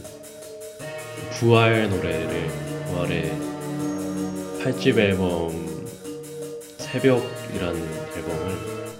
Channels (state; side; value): identical; both; correlation 1.00